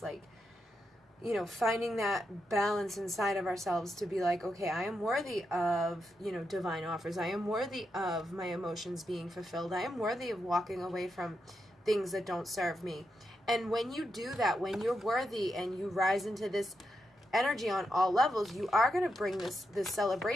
like, finding that balance inside of ourselves to be like, okay, I am worthy of, divine offers. I am worthy of my emotions being fulfilled. I am worthy of walking away from things that don't serve me. And when you do that, when you're worthy and you rise into this energy on all levels, you are going to bring this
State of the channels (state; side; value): normal; both; correlation 0.85